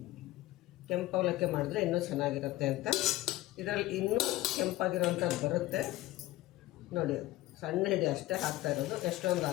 ಕೆಂಪು ಅವಲಕ್ಕಿ ಮಾಡಿದ್ರೆ ಇನ್ನೂ ಚೆನ್ನಾಗಿರುತ್ತೆ ಅಂತ. ಇದರಲ್ಲಿ ಇನ್ನೂ ಕೆಂಪಾಗಿರೋವಂಥದ್ದು ಬರುತ್ತೆ ನೋಡಿ. ಸಣ್ಣ ಹಿಡಿ ಅಷ್ಟೇ ಹಾಕ್ತಾ ಇರೋದು, ಎಷ್ಟೊಂದು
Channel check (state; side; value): quieter; right; 17.0 dB